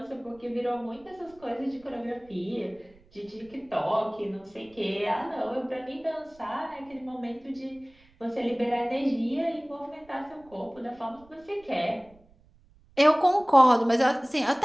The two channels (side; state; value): right; noise; rumble, 29 dB below the sound